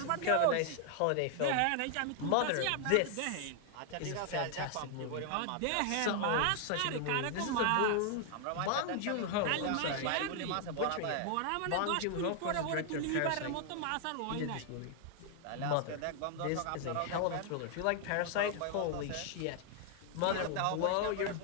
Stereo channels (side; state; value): both; different; correlation 0.00